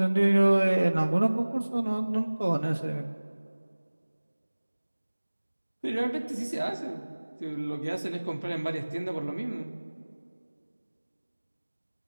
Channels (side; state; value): both; inverted; correlation -1.00